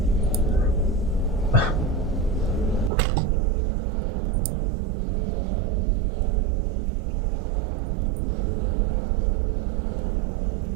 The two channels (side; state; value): left; drops out; at 2.9 s